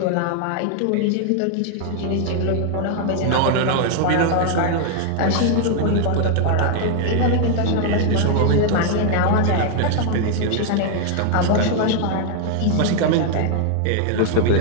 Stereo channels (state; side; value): different; both; correlation 0.00